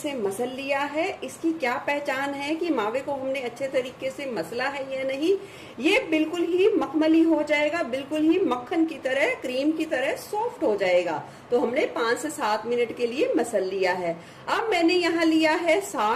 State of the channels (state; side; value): identical; both; correlation 1.00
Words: मसल लिया है। इसकी क्या पहचान है कि मावे को हमने अच्छे तरीके से मसला है या नहीं। ये बिल्कुल ही मखमली हो जाएगा, बिल्कुल ही मक्खन की तरह, क्रीम की तरह सॉफ्ट हो जाएगा। तो हमने 5 से 7 मिनट के लिए मसल लिया है। अब मैंने यहाँ लिया है